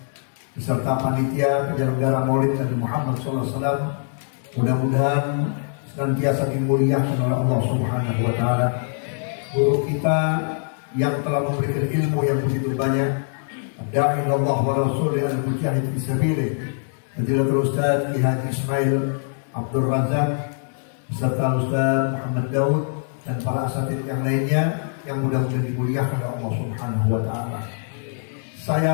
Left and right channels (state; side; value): silent; right; digital silence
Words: beserta panitia penyelenggara Maulid Nabi Muhammad SAW, mudah-mudahan senantiasa dimuliakan oleh Allah Subhanahu wa taala. Guru kita yang telah memberikan ilmu yang begitu banyak, da'i Allah wa rasulih al-mujahid fi sabilih, Fadilatul Ustaz Ki Haji Ismail Abdul Razak beserta Ustaz Muhammad Daud dan para asatidz yang lainnya yang mudah-mudahan dimuliakan oleh Allah Subhanahu wa taala.